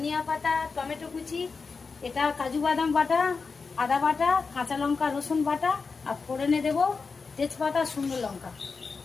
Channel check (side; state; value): right; quieter; 4.7 dB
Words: পাতা, টমেটো কুচি, এটা কাজু বাদাম বাটা, আদা বাটা, কাঁচা লঙ্কা রসুন বাটা, আর ফোড়নে দেবো তেজপাতা, শুকনো লঙ্কা।